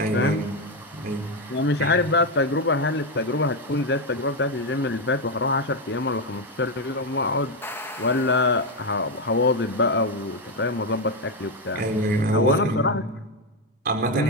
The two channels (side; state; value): both; normal; correlation 0.07